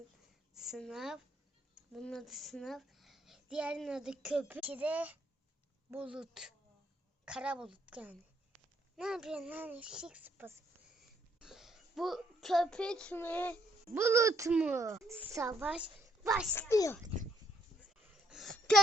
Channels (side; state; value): both; normal; correlation 0.70